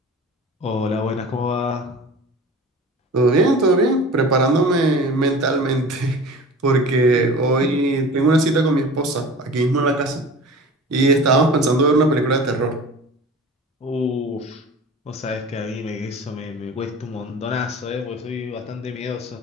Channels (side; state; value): both; normal; correlation 0.39